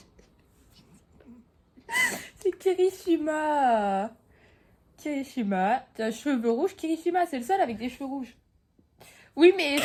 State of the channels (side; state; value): both; identical; correlation 1.00